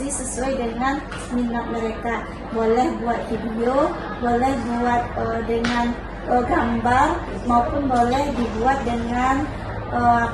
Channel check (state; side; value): identical; both; correlation 1.00